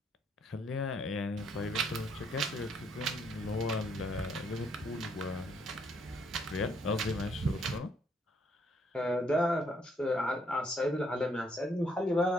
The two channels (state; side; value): normal; both; correlation 0.70